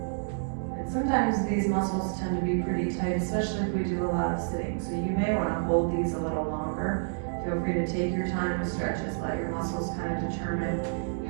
Sometimes these muscles tend to be pretty tight, especially if we do a lot of sitting. So you may want to hold these a little longer. Feel free to take your time to stretch this. Let your muscles kind of determine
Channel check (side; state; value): left; silent; 59 dB below the other